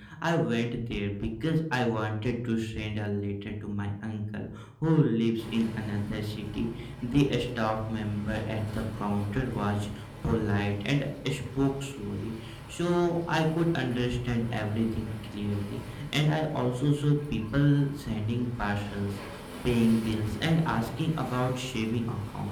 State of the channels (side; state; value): both; identical; correlation 1.00